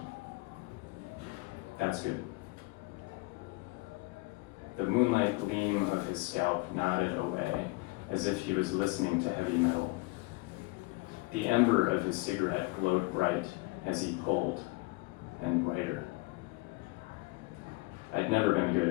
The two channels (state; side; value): quieter; right; 23.3 dB